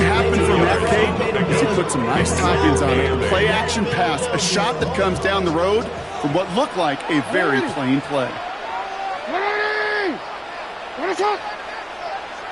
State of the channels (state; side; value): identical; both; correlation 1.00